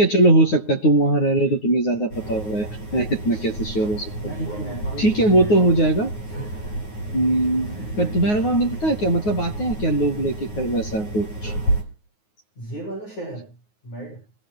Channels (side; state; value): right; late; 9.5 ms